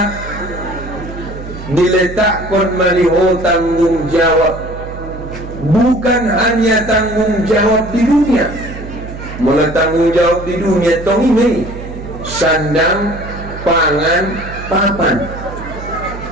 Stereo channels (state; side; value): noise; right; hum, 11 dB below the sound